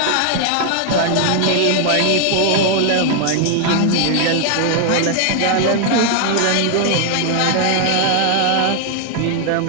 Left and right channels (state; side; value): different; both; correlation 0.00